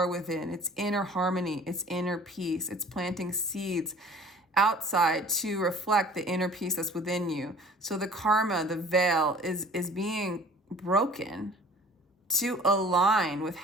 within. It's inner harmony. It's inner peace. It's planting seeds outside to reflect the inner peace that's within you. So the karma, the veil is being broken to align with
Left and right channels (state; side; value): normal; both; correlation 0.48